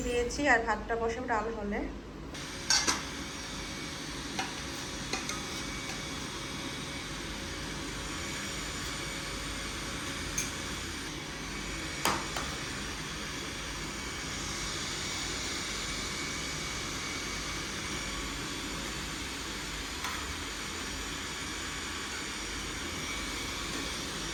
দিয়েছি, আর ভাতটা বসাবো ডাল হলে।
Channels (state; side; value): identical; both; correlation 1.00